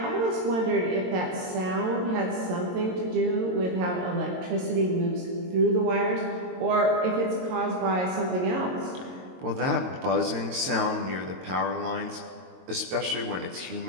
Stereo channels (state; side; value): late; left; 22 ms